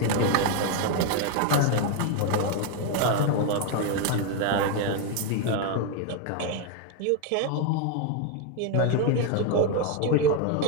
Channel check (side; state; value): both; different; correlation 0.01